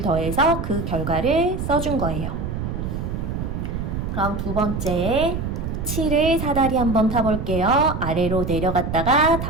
더해서 그 결과를 써준 거예요. 그럼 두 번째 7을 사다리 한번 타볼게요. 아래로 내려갔다가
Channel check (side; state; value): right; noise; rumble, 4 dB below the sound